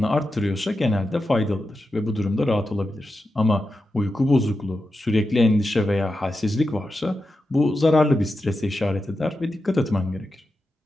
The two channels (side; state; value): both; normal; correlation 0.90